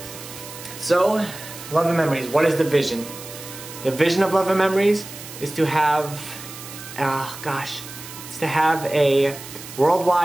So, Love and Memories, what is the vision? The vision of Love and Memories is to have, it's to have a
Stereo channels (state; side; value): noise; right; hiss, 13 dB below the sound